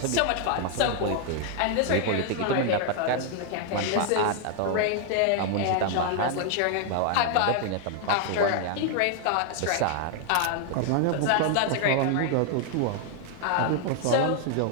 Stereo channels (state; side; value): different; both; correlation 0.00